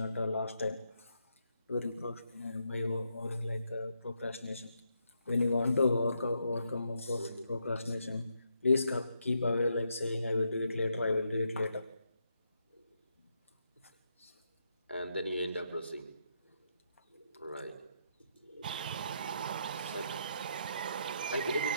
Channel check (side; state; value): both; inverted; correlation -0.80